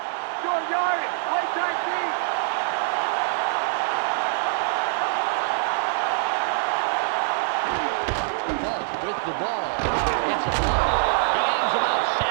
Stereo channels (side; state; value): left; silent; digital silence